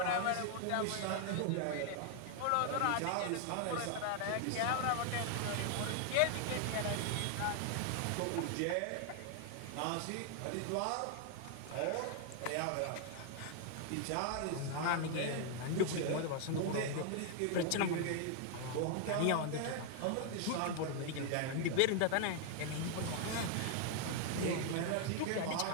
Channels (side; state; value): both; different; correlation 0.00